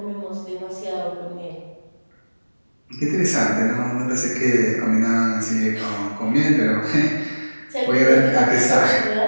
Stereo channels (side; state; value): both; inverted; correlation -1.00